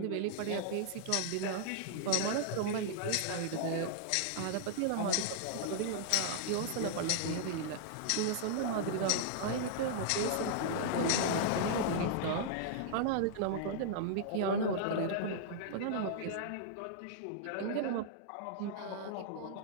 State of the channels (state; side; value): different; both; correlation -0.01